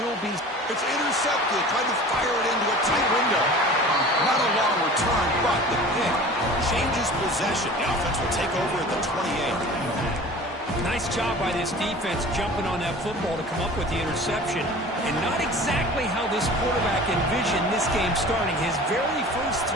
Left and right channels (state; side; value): normal; both; correlation 0.41